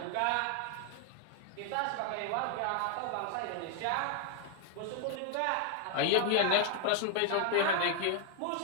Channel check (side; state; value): both; different; correlation 0.00